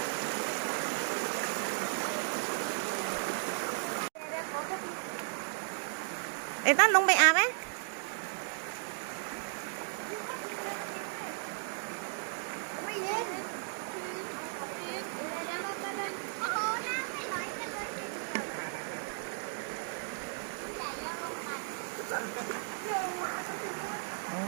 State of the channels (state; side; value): silent; left; digital silence